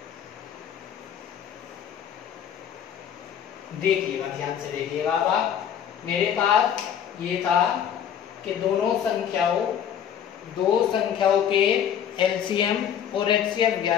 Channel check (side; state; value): right; quieter; 9.0 dB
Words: देखिएगा, ध्यान से देखिएगा। अब आप, मेरे पास ये था कि दो संख्याओं के एलसीएम और एचसीएफ